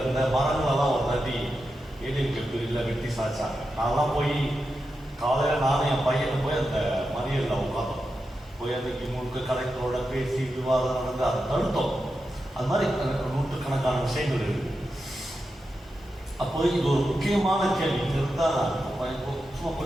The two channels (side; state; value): both; normal; correlation 0.89